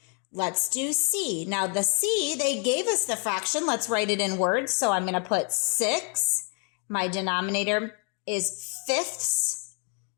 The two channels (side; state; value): right; quieter; 39.6 dB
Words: Let's do C. Now the C, they gave us the fraction. Let's write it in words. So I'm going to put 6. My denominator is fifths.